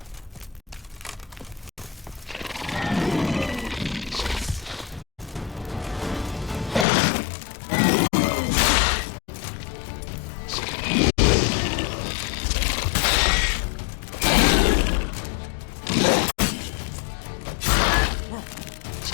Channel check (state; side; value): drops out; right; at 6.9 s